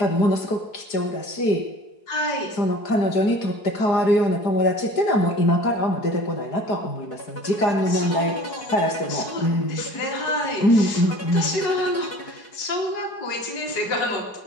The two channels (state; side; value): late; right; 4.8 ms